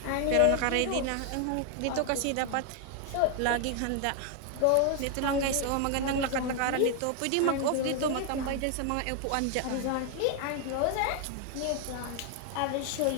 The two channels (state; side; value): different; both; correlation 0.00